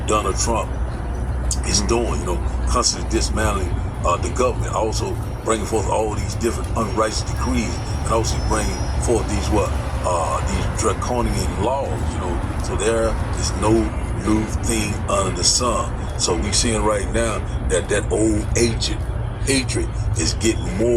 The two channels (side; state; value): both; identical; correlation 1.00